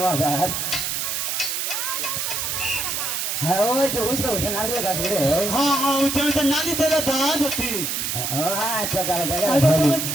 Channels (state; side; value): noise; right; hiss, 1 dB below the sound